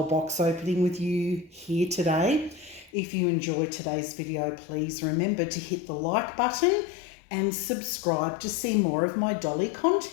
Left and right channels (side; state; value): right; drops out; at 2.9 s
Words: box opening with you here today. If you enjoyed today's video, please remember to hit the like button and subscribe to see more of my dolly